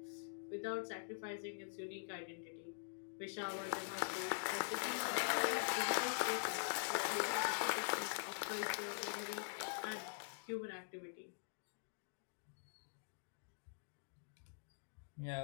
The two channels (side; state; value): right; silent; digital silence